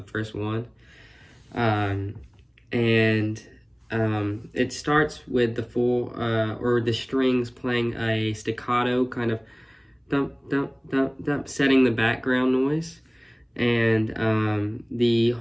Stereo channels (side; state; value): both; identical; correlation 1.00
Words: first one. It starts with the full, or the strings playing a staccato kind of thump, thump, thump, thump, setting the background noise. And the